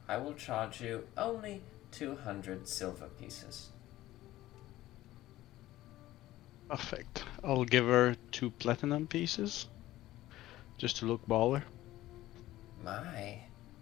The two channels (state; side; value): quieter; right; 15.7 dB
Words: I will charge you only 200 silver pieces. Perfect. I'll give her 2 platinum pieces, just to look baller. My,